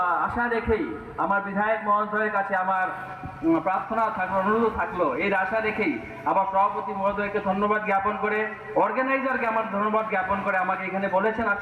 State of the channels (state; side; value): identical; both; correlation 1.00